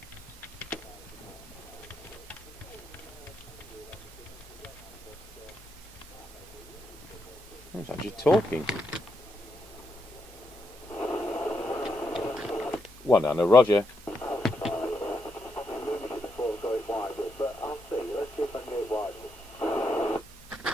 It's actually talking. One and a Roger.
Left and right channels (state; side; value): normal; both; correlation 0.80